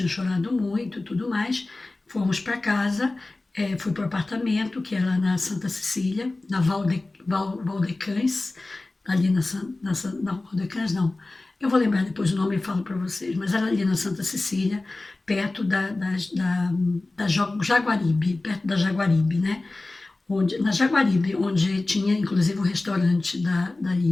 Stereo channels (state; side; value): quieter; right; 3.1 dB